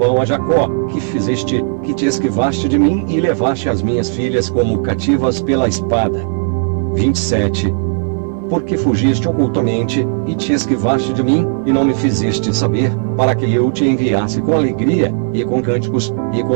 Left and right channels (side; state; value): left; silent; 62 dB below the other